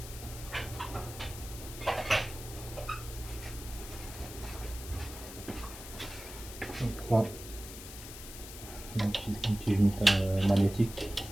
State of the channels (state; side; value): noise; left; hiss, 12 dB below the sound